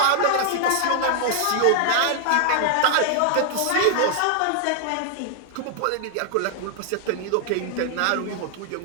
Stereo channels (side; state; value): both; different; correlation -0.01